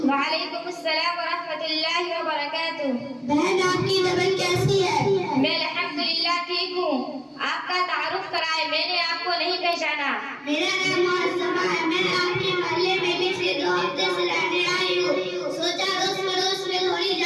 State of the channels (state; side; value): identical; both; correlation 1.00